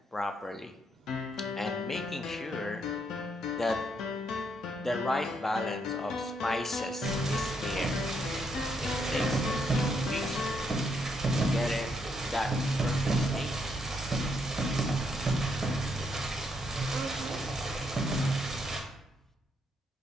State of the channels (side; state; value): both; normal; correlation 0.75